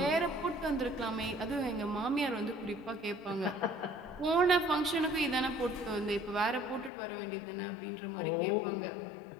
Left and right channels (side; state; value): right; drops out; at 6.9 s